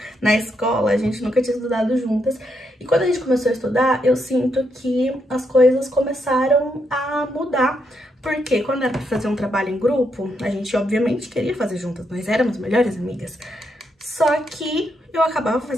na escola, a gente nunca tinha estudado juntas. E quando a gente começou a estudar, eu sinto que as coisas começaram a mudar. Porque quando era pra fazer um trabalho em grupo, a gente obviamente queria fazer juntas, nós éramos melhores amigas. Só que eu acabava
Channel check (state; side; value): normal; both; correlation 0.79